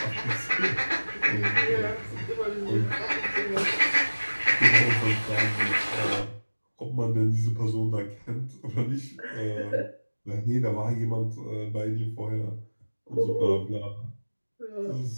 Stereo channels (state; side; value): inverted; both; correlation -1.00